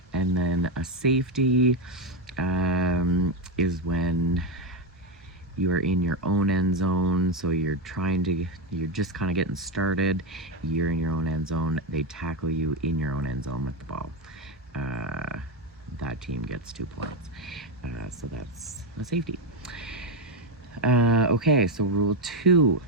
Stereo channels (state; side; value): normal; both; correlation 0.08